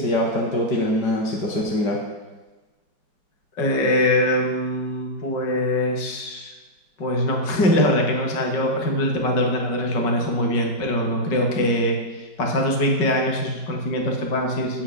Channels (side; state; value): right; late; 5.3 ms